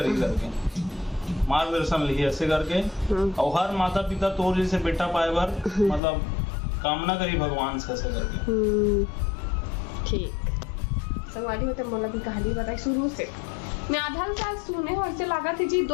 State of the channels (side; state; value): right; drops out; at 6.0 s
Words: ही करके मार्गदर्शन ली ऐसे करके। और हर माता पिता तोर जैसे बेटा पाए बार मतलब कामना करी भगवान से ऐसे करके। ठीक संगवारी होते मोला की कहानी बताई शुरू से। मैं आधा साल सुने हो ऐसे लगा थी जी